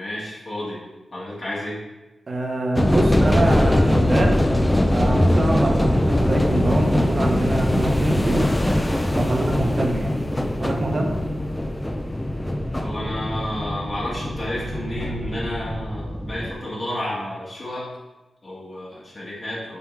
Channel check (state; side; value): normal; both; correlation 0.95